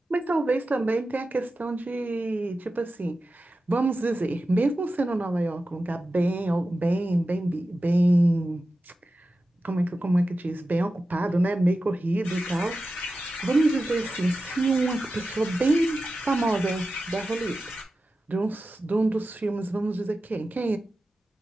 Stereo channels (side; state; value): both; normal; correlation 0.93